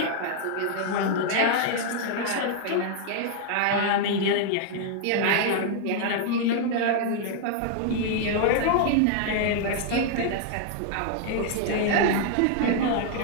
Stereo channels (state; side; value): different; both; correlation 0.00